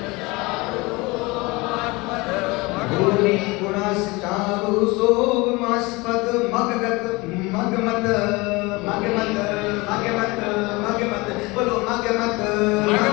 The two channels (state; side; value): quieter; right; 24.1 dB